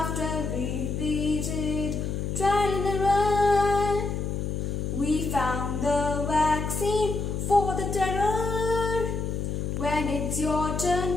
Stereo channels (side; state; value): left; noise; hum, 2 dB below the sound